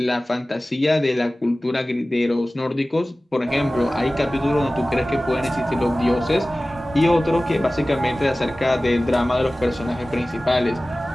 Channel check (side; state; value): both; normal; correlation 0.97